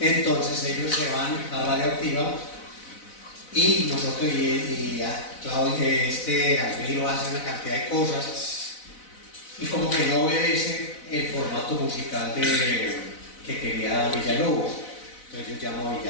ellos se van a Radioactiva y nosotros Claudio, Alviro hace una cantidad de cosas y como que no obedece el formato musical que quería Villalobos. Entonces yo llamo a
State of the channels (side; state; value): right; late; 4.0 ms